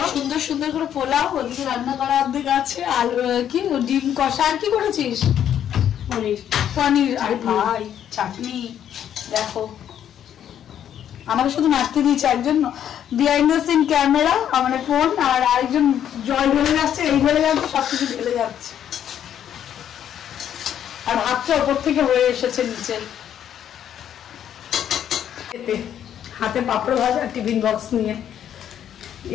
সুন্দর সুন্দর করে পোলাও, ওদিকে রান্না করা অর্ধেক আছে, আর কি ডিম কষা। আর কি করেছিস? পনির। আর ভাই চাটনি। দেখো, আমাকে শুধু মারতে দিয়েছে একজন বিহাইন্ড দ্য সিন ক্যামেরা, আমার ফোন, আর আরেকজন জল ঢেলে যাচ্ছে, এই ঢেলে যাচ্ছে, সবকিছু ঢেলে যাচ্ছে। আর ভাতটা ওপর থেকে হয়ে এসেছে নিচে। হাতে পাপড় ভাজা, টিফিন বক্স নিয়ে।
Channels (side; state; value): right; quieter; 9.9 dB